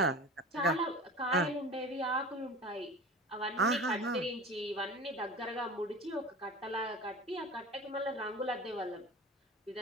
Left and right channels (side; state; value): both; normal; correlation 0.35